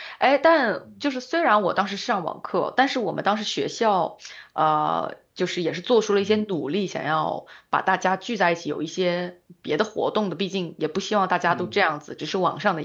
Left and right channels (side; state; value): both; identical; correlation 1.00